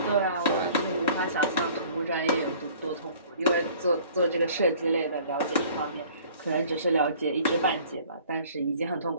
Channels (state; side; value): inverted; both; correlation -0.52